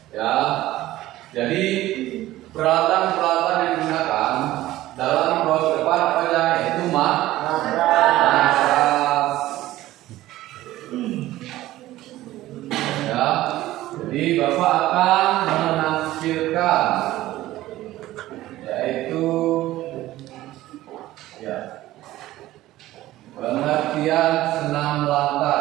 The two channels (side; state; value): left; quieter; 15.8 dB